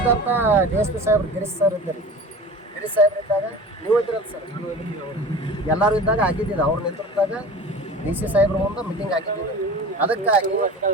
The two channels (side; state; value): both; normal; correlation 0.37